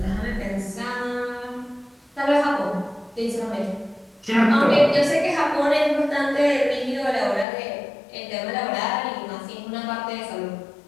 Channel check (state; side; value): drops out; right; at 7.5 s